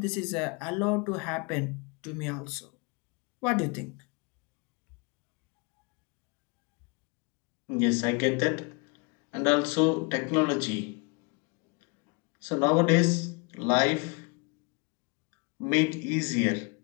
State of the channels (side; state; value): right; quieter; 31.3 dB